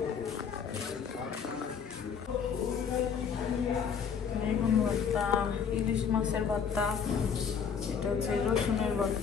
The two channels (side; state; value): right; quieter; 6.8 dB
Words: বেগুন ভর্তা ইলিশ মাছের ভর্তা এটা হচ্ছে রসুনের